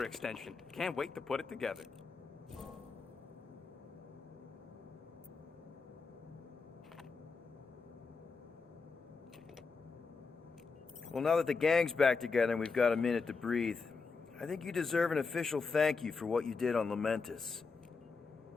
extension. Can't wait to put it together. Well, now that the gang's back together and we've got a minute to breathe, I think you deserve an official thank you for what you did on Lamentus.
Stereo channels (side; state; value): right; quieter; 4.7 dB